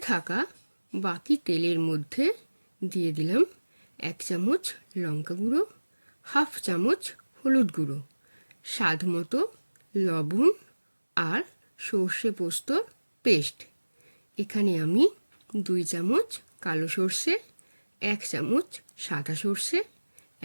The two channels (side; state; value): both; inverted; correlation -1.00